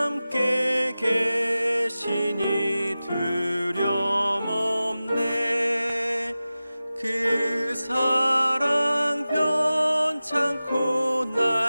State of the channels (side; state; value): both; inverted; correlation -0.95